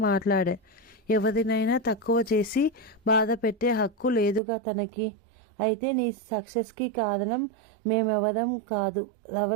మాట్లాడా. ఎవరినైనా తక్కువ చేసి బాధ పెట్టే హక్కు లేదుగా తనకి. అయితే నీ సక్సెస్కి కారణం మేమెవరం కాదు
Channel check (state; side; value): drops out; left; at 4.4 s